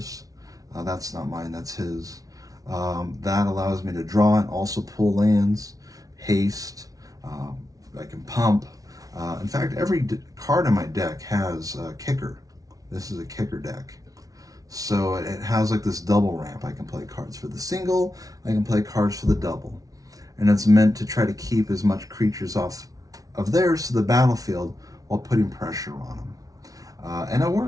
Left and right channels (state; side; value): late; left; 0.18 ms